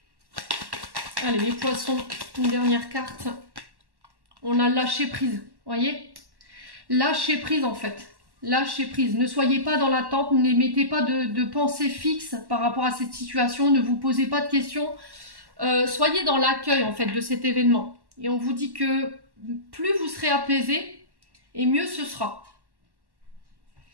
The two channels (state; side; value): late; left; 1.1 ms